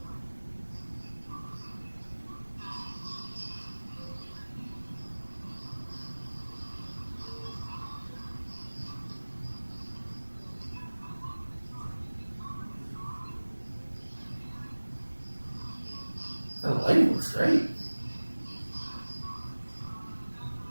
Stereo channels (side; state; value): both; inverted; correlation -1.00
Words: The lighting looks great.